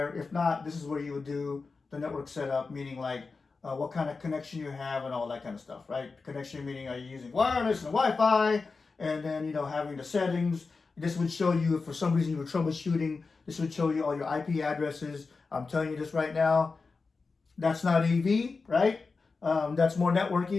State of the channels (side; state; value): right; quieter; 4.3 dB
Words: If not, this is where you would do the network setup, meaning like what kind of connection you have and all that kind of stuff, right? Connection meaning, are you using wireless and Wi-Fi, and then having the settings. This would show you if for some reason you were troubleshooting. This would show you all your IP addresses. I'm telling you this right now. That's not AV, right? That's more